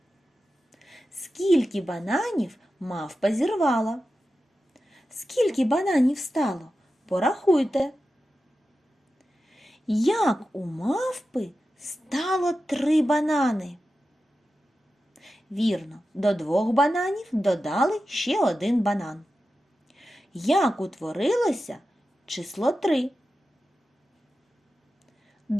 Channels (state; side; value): normal; both; correlation 0.92